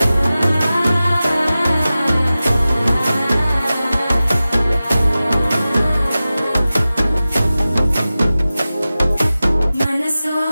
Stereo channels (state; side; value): inverted; both; correlation -0.95